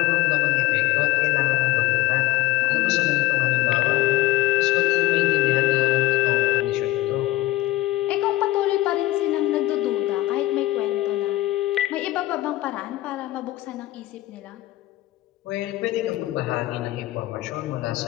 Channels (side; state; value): right; quieter; 16.8 dB